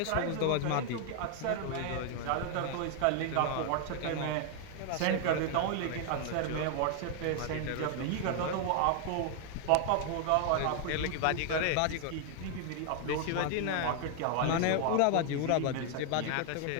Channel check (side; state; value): both; different; correlation 0.00